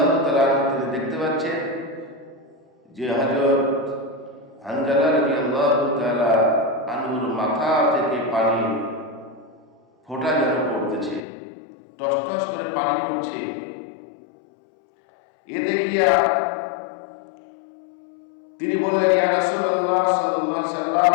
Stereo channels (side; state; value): right; drops out; at 11.2 s